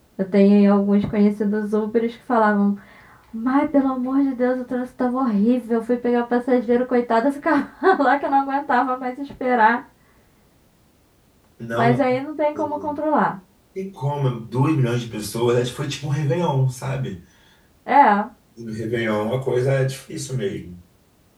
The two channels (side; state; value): both; identical; correlation 1.00